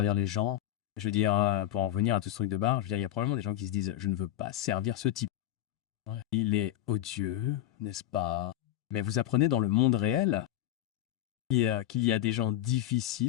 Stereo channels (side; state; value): right; quieter; 13.0 dB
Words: les gens. Je veux dire, pour en revenir à tout ce truc de bar, je veux dire, il y a probablement des gens qui se disent « Je ne veux pas servir ce type. Ouais. Il est odieux, n'est-ce pas ?» Mais vous apprenez dans le monde réel qu'il y a des gens